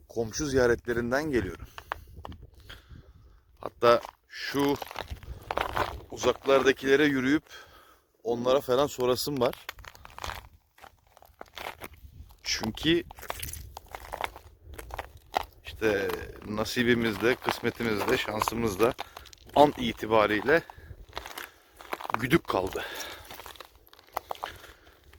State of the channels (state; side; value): identical; both; correlation 1.00